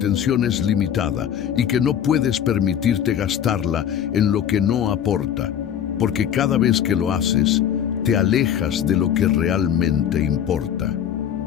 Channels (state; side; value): quieter; right; 9.3 dB